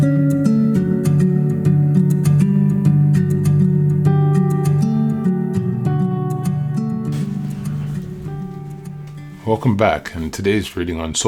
Welcome back, and today's reading on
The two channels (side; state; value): both; identical; correlation 1.00